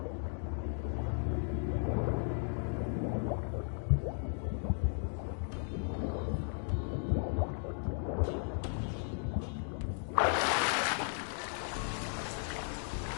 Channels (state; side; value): silent; right; 54 dB below the other